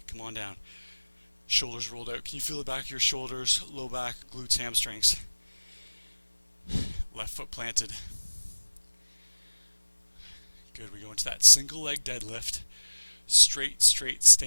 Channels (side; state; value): both; inverted; correlation -1.00